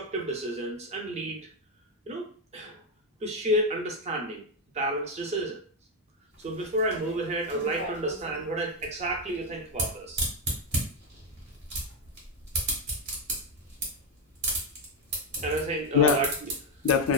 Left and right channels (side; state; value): both; normal; correlation 0.06